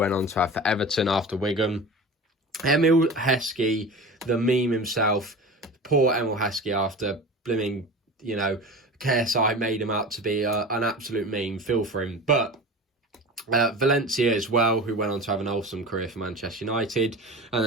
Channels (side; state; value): both; normal; correlation 0.33